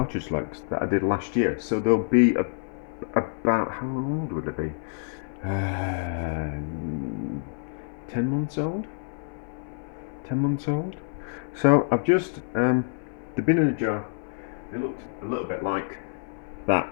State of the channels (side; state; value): right; silent; 56 dB below the other